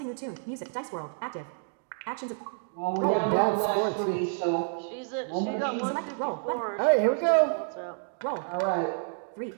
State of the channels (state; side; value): silent; left; digital silence